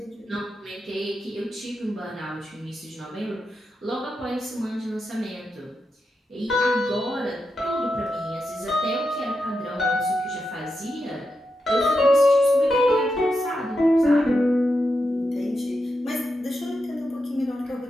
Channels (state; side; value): normal; both; correlation 0.87